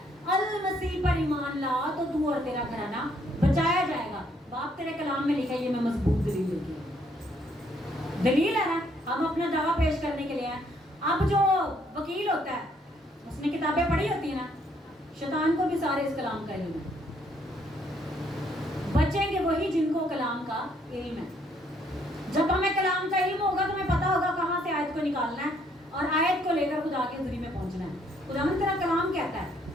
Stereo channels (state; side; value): normal; both; correlation 0.68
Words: अल मसीह पर ईमान ला तो तू और तेरा घराना बचाया जाएगा। बाप तेरे कलाम में लिखा है, ये मैं मजबूत दलील लेके आई। दलील है ना, हम अपना दावा पेश करने के लिए हैं। अब जो वकील होता है उसने किताबें पढ़ी होती है ना, शैतान को भी सारे इस कलाम का इल्म है। बचेंगे वही जिनको कलाम का इल्म है। जब हमें कलाम का इल्म होगा तो हमें पता होगा कहाँ से आयत को निकालना है और आयत को लेकर खुदा के हुजूरी में पहुंचना है। खुदावंद तेरा कलाम कहता है